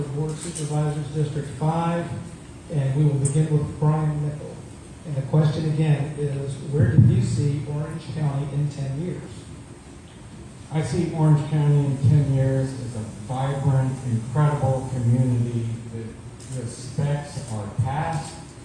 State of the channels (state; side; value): identical; both; correlation 1.00